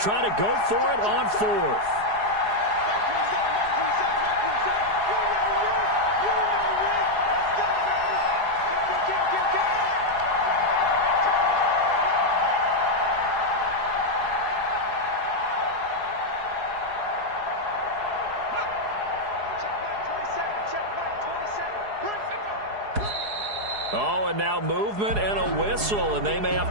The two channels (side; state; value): left; late; 4.8 ms